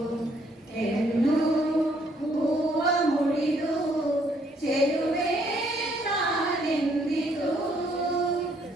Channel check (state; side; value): normal; both; correlation 0.68